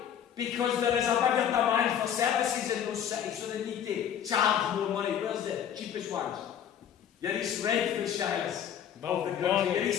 Because there is a bigger demand for services in those cities, so they need to charge more money. Where's the cheapest ones? Your East Redford shires of the country, your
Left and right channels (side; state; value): right; quieter; 9.3 dB